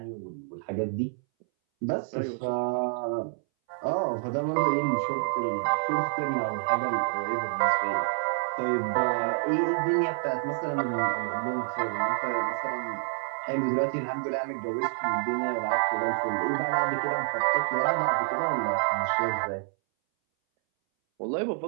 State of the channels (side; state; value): left; silent; 59 dB below the other